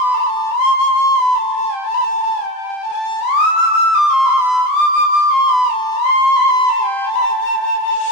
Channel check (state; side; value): late; right; 32 ms